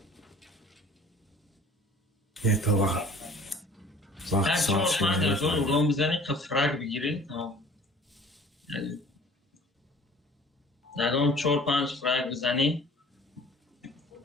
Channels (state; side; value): normal; both; correlation 0.49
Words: یه تو وقت هر صاف 4-5 شده از اون رو بزنی که فرق بگیری تمام. در اون 4-5 فرق بزنی